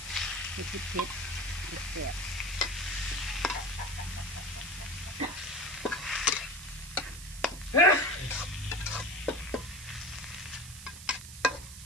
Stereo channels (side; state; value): right; noise; hiss, 13 dB below the sound